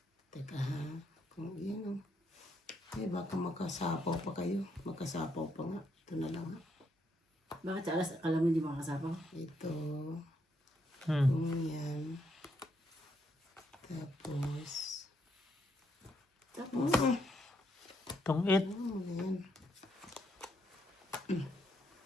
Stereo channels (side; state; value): both; normal; correlation 0.76